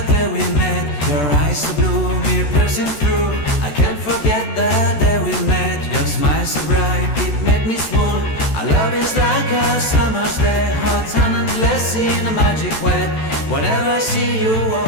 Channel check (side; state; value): right; late; 14 ms